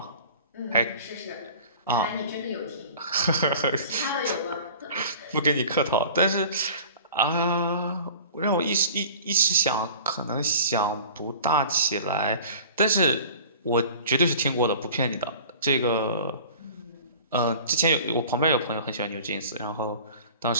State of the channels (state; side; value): inverted; both; correlation -0.43